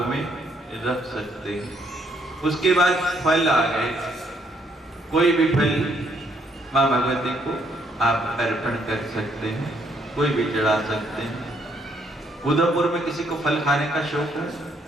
में रख सकते हैं। उसके बाद फल आ गए, कोई भी फल मां भगवती को आप अर्पण कर सकते हैं, कोई भी चढ़ा सकते हैं। उदयपुर में किसी को फल खाने का शौक है?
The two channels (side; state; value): both; normal; correlation 0.70